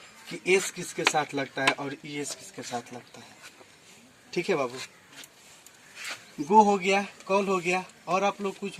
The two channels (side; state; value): both; identical; correlation 1.00